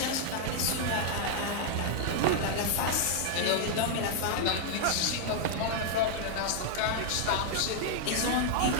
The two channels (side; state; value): both; different; correlation 0.00